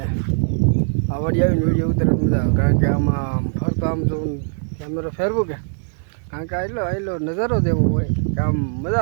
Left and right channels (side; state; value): left; silent; 59 dB below the other